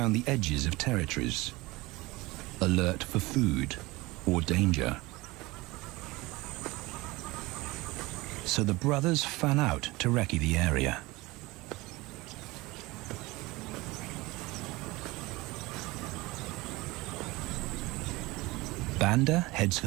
the edges of territories, alert for food or danger. So the brothers fan out to recce the area. Banda heads for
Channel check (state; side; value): quieter; left; 21.7 dB